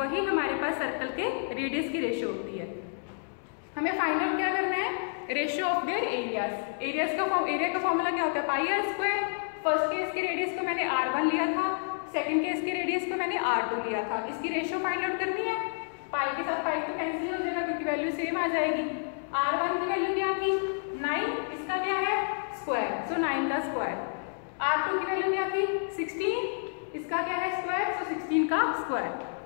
हमारे पास सर्कल के रेडियस की रेशियो होती है। हमें फाइंड आउट क्या करना है, ratio of their areas. Area का फॉर्मूला क्या होता है, pi r square. First case के रेडियस को मैंने r1 लिया था, सेकंड केस के रेडियस को मैंने r2 लिया था। इसकी रेशियो फाइंड आउट करनी है, पाई के साथ पाई तो कैंसिल हो जाएगा क्योंकि वैल्यू सेम आ जाएगी। r1 की वैल्यू क्या थी 9, इसका क्या है स्क्वायर, सो 9 का स्क्वायर। r2 की वैल्यू क्या थी 16, इसका क्या है स्क्वायर, सो 16 का स्क्वायर।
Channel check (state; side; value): silent; right; digital silence